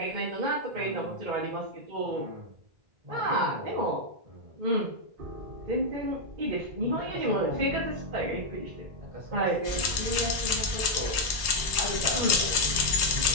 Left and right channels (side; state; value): left; late; 1.1 ms